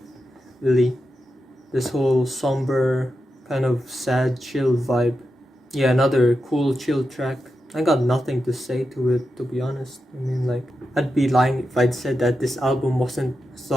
really. This whole somber, kind of sad, chill vibe. Yeah, another cool, chill track. I got nothing to say to it, to be honest. I mean, like, I'd be lying if I'd said that this album wasn't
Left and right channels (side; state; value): both; normal; correlation 0.88